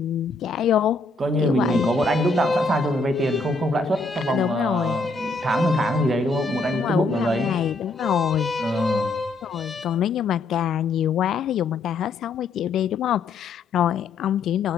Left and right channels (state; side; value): quieter; right; 3.4 dB